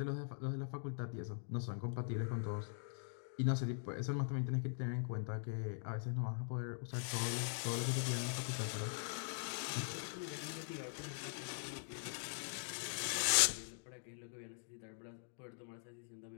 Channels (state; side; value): silent; right; digital silence